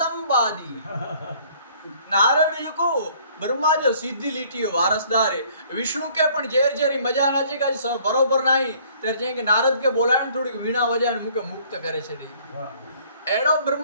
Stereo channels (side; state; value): both; inverted; correlation -0.58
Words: नारद जी को ब्रह्मा जो सीधी लीटी वारसदार है विष्णु के पण जेर जेरी मजा ना चे का बरोबर नहीं तेर जे के नारद के बोलाण थोड़ी वीणा वजाण मुके मुक्त करे छे एड़ो